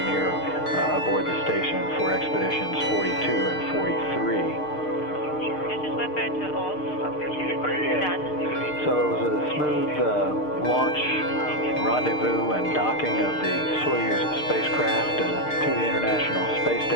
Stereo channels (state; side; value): late; right; 6.6 ms